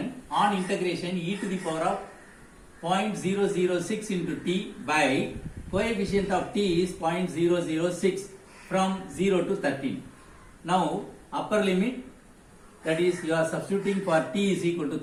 On integration e to the power of 0.006 into t by coefficient of t is 0.006 from 0 to 13. Now upper limit, that is you are substituting for t is equal to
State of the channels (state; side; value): identical; both; correlation 1.00